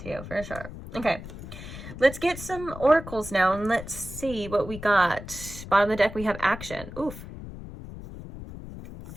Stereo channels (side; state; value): left; noise; rumble, 12 dB below the sound